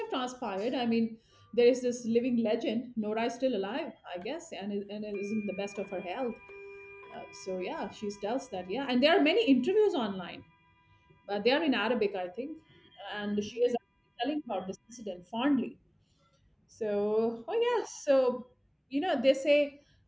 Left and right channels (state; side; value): identical; both; correlation 1.00